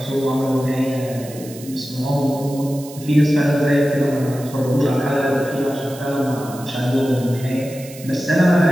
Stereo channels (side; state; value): right; noise; hiss, 17 dB below the sound